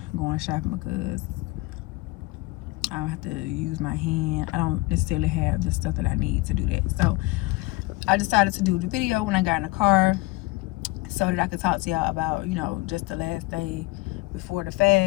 going shopping because I don't have to use my hand. I don't necessarily have the stuff that I need to do that. So I decided to do the video when I got in the car, so that I could talk to y'all about, you know, just the last day before the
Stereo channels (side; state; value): right; quieter; 22.1 dB